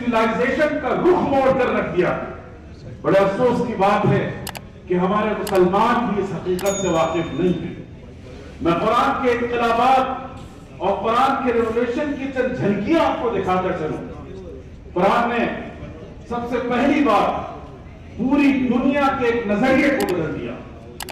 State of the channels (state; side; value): identical; both; correlation 1.00